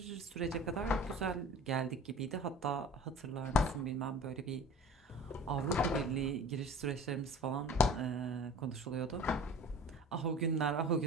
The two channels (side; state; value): both; normal; correlation 0.41